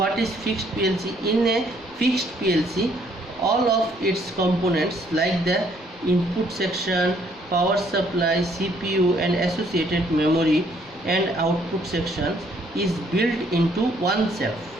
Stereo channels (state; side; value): noise; left; rumble, 27 dB below the sound